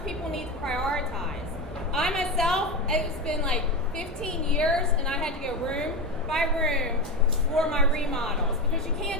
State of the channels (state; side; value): normal; both; correlation 0.18